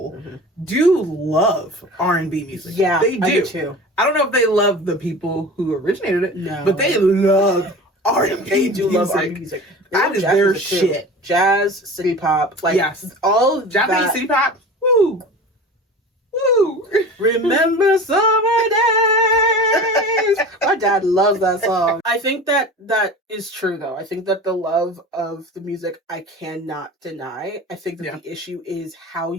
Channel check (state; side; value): normal; both; correlation 0.36